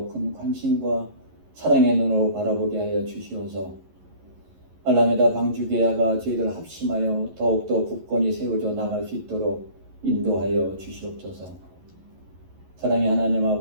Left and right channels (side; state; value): left; late; 11 ms